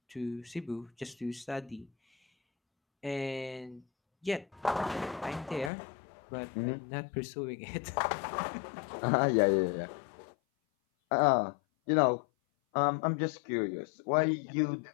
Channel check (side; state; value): right; drops out; at 5.7 s